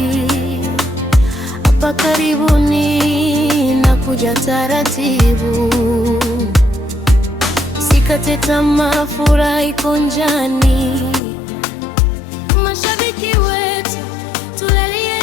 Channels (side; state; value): right; drops out; at 11.2 s